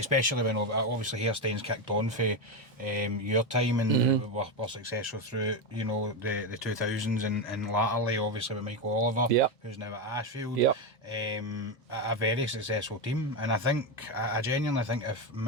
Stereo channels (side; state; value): both; normal; correlation 0.11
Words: when obviously Hairstains kicked on for your time and were successful through, you know, the 2000s and latterly obviously with Michael Oliver, who's now at Ashfield. A very successful team, and I genuinely think if